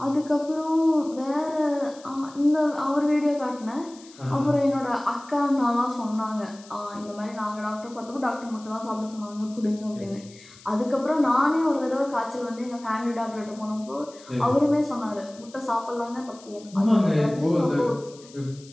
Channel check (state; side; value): noise; left; hiss, 22 dB below the sound